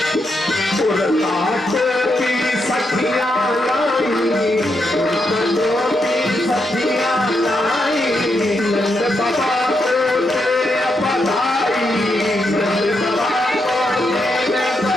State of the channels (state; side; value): normal; both; correlation 0.82